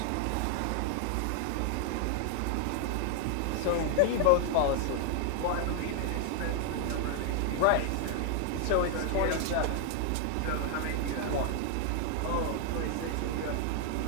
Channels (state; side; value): different; both; correlation 0.00